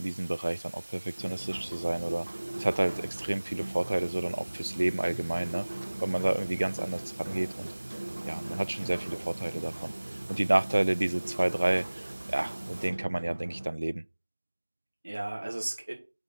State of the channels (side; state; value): both; inverted; correlation -1.00